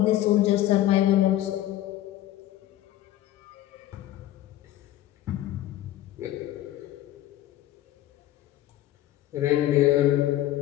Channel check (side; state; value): right; quieter; 13.9 dB